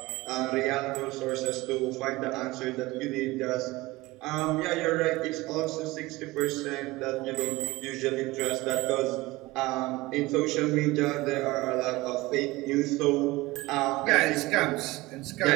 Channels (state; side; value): quieter; left; 20.4 dB